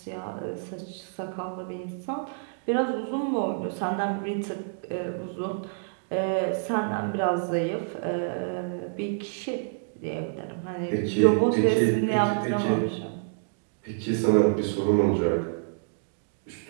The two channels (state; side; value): silent; left; digital silence